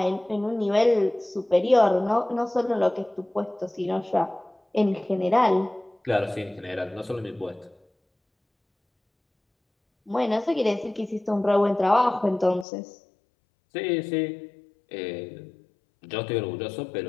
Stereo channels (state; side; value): drops out; right; at 12.7 s